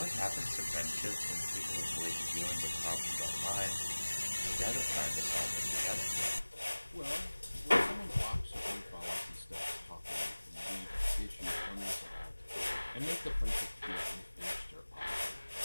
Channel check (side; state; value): both; inverted; correlation -1.00